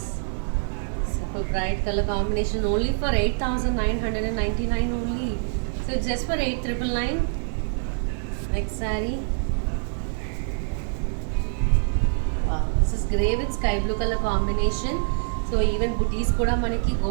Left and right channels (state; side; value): silent; left; digital silence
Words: bright color combination only for 8,999 only. So it's just for 8,999. Next saree. Wow, this is grey with sky blue color combination. So even booties kuda manaki